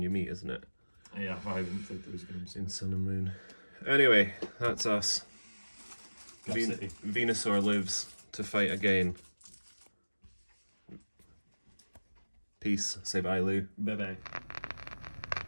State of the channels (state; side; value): inverted; both; correlation -1.00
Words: you meet, isn't it? Yeah, I haven't played those games. In Sun and Moon. Anyway, that's us. Gaff City. Venusaur lives to fight again. Peace. Say bye, Lou. Bye bye.